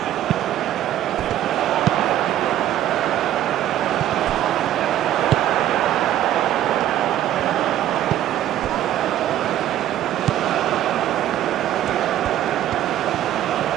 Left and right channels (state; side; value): quieter; left; 12.2 dB